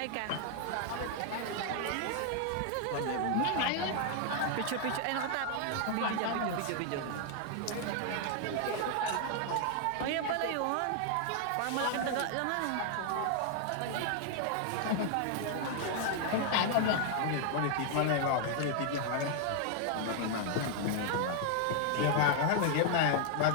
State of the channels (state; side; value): different; both; correlation 0.00